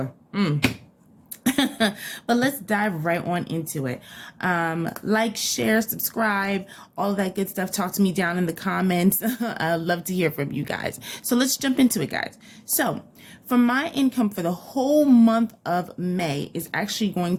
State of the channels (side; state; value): both; identical; correlation 1.00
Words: But let's dive right on into it. Like, share, subscribe, all that good stuff. Talk to me down in the comments. I'd love to hear from you guys. So let's jump into it, guys. So for my income for the whole month of May is actually going